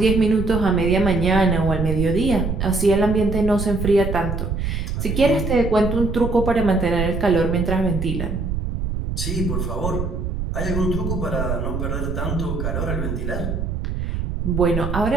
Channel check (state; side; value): noise; right; rumble, 3 dB below the sound